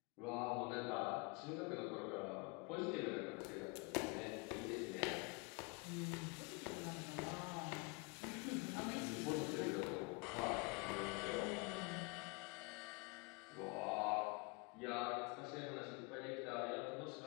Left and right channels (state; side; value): quieter; right; 30.6 dB